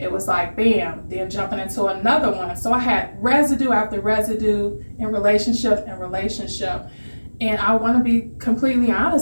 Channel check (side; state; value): both; inverted; correlation -1.00